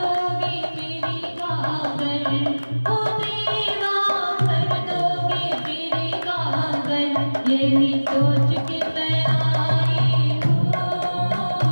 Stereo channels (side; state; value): both; inverted; correlation -1.00